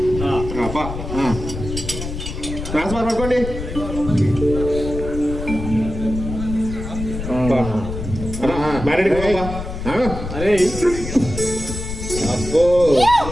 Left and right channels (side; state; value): left; noise; rumble, 7 dB below the sound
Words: ట్రాన్స్ఫర్ పట్టుకోండి. మ్యారేడ్ అరే అబ్బో